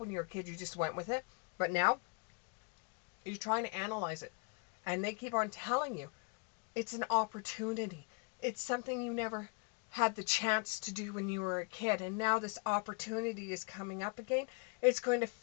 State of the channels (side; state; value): right; quieter; 34.0 dB